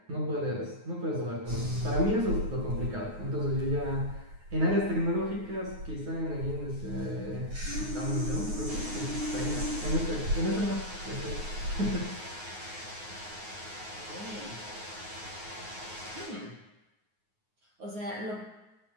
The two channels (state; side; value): late; left; 9.5 ms